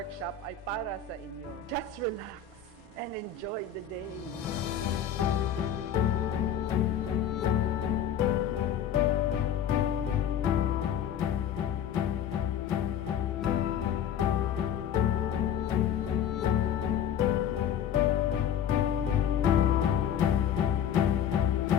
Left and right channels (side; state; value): right; quieter; 8.7 dB